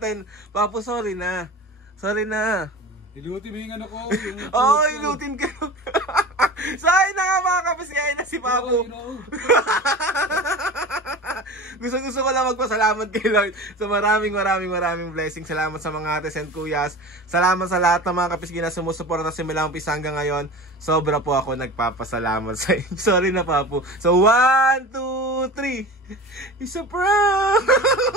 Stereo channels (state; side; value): normal; both; correlation 0.34